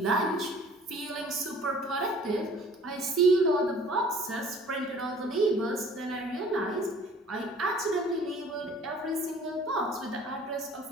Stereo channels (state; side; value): normal; both; correlation 0.51